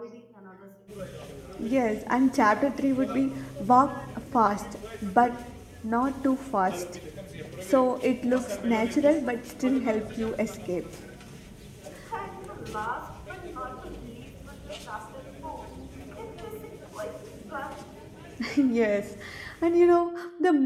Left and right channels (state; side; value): identical; both; correlation 1.00